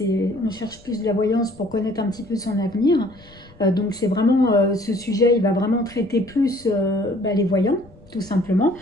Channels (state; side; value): noise; left; rumble, 25 dB below the sound